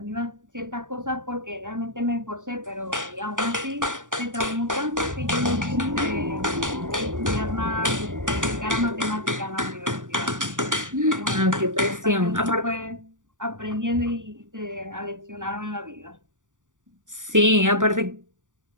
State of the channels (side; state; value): left; late; 0.87 ms